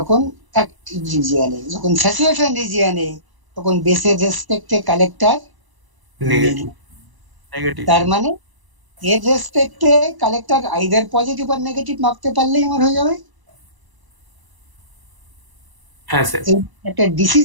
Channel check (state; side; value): late; left; 1.0 ms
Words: অ্যাক্টিভ রিজিয়নে, যখন স্যাচুরেশন রিজিয়নে, তখন বেসের রেসপেক্টে কালেক্টর নেগেটিভ। Negative. তার মানে এর রেসপেক্টে কালেক্টর আইদার পজিটিভ আর নেগেটিভ মাপতে পারলেই আমার হয়ে যাবে। হ্যাঁ স্যার। এই একটা ডিসি